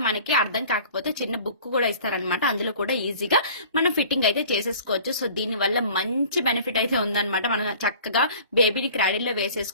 మనకి అర్థం కాకపోతే చిన్న బుక్ కూడా ఇస్తారనమాట, అందులో కూడా ఈజీగా మనం ఫిట్టింగ్ అయితే చేసేసుకోవచ్చు. సో దీని వల్ల మంచి బెనిఫిట్ అయితే ఉందన్నమాట. మనం చక్కగా బేబీని క్రాడిల్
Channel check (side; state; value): both; inverted; correlation -0.46